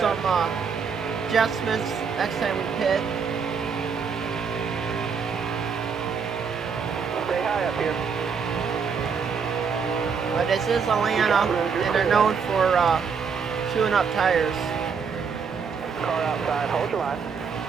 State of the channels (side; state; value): left; quieter; 6.0 dB